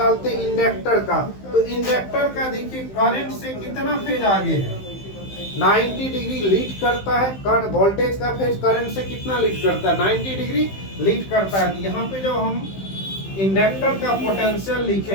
इंडक्टर का। तो इंडक्टर का देखिए करंट से कितना फेज आगे है 90 डिग्री लीड करता है। वोल्टेज का फेज करंट से कितना लीड करता है 90 डिग्री लीड करता है। यहाँ पे जब हम इंडक्टर का पोटेंशियल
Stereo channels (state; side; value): late; right; 15 ms